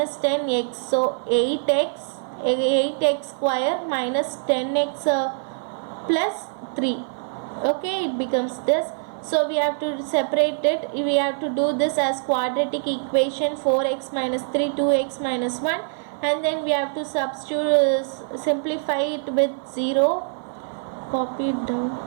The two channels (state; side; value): silent; left; 56 dB below the other